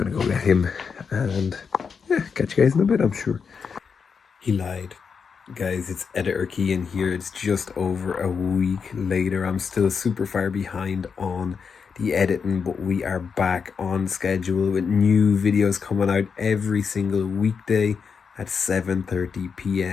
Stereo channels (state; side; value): quieter; right; 6.0 dB